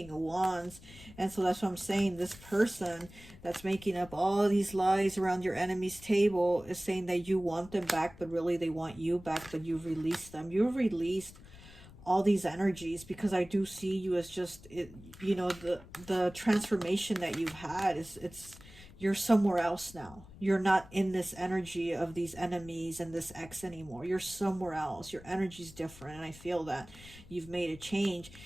of Wands. And so that's what I'm saying. This person that's making up all these lies around your enemy's table is saying that you want them back, but really they want you back, but you've released them. You've released all these energies, because I do see you as just, you know, the transformation that you've had is, you're somewhere else now. You're not in this energy of these enemies and this ex anymore. You're somewhere else. Your energy's different, and I feel that you've made a change.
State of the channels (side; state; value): left; noise; rumble, 19 dB below the sound